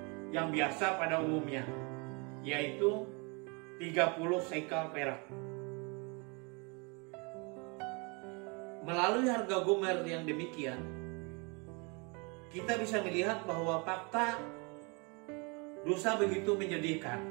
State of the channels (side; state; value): left; quieter; 31.5 dB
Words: yang biasa pada umumnya, yaitu 30 sekal perak. Melalui harga gomer yang demikian, kita bisa melihat bahwa fakta dosa begitu menyedihkan.